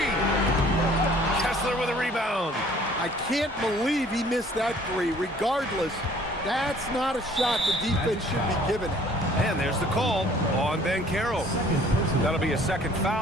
Kessler with a rebound. I can't believe he missed that three. Regardless, that's not a shot the defense should be giving it. And there's the call on Banchero. That'll be a second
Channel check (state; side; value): normal; both; correlation 0.55